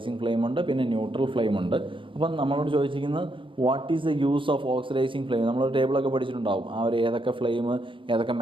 ഫ്ലെയിം ഉണ്ട്, പിന്നെ ന്യൂട്രൽ ഫ്ലെയിം ഉണ്ട്. അപ്പം നമ്മളോട് ചോദിച്ചിരിക്കുന്നത് what is the use of oxidising flame. നമ്മളൊരു ടേബിളൊക്കെ പഠിച്ചിട്ടുണ്ടാവും, ആ ഒരു ഏതൊക്കെ ഫ്ലെയിം ഏതൊക്കെ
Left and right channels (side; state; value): left; late; 0.25 ms